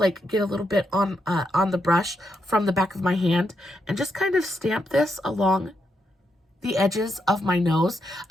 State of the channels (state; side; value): normal; both; correlation 0.81